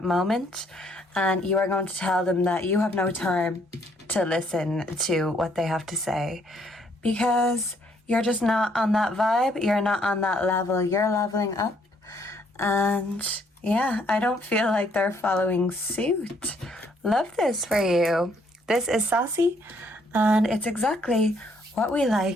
moment and you are going to tell them that you have no time to listen to what they have to say because you're just not on that vibe. You're not on that level. You're leveling up. And yeah, I don't feel like they're following suit. Love this for you. This is saucy, and it's exactly what we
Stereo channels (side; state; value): both; normal; correlation 0.67